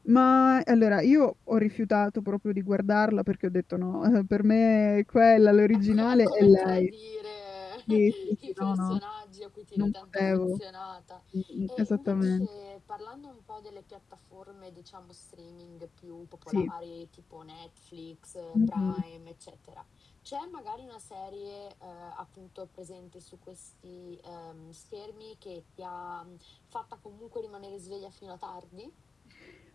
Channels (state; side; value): quieter; right; 4.6 dB